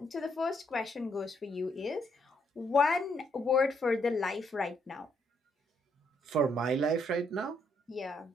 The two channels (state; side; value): normal; both; correlation 0.73